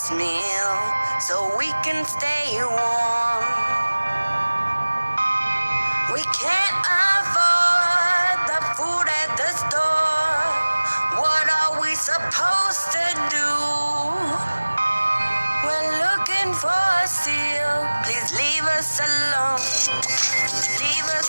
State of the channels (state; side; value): inverted; both; correlation -1.00